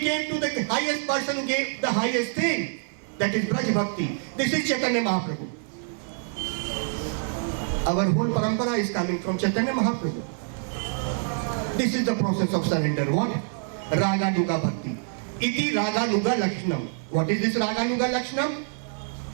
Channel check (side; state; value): left; silent; 56 dB below the other